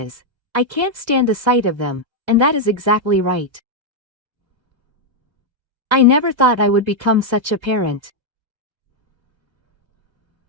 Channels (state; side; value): late; left; 1.3 ms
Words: I can't stand the sight of them, and that is exactly right. I never thought I would become such a parent.